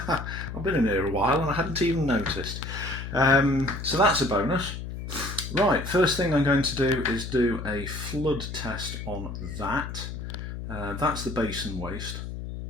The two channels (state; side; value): noise; left; hum, 7 dB below the sound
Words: been in here a while and I hadn't even noticed. So that's a bonus. Right, first thing I'm going to do is do a flood test on that. That's the basin waste,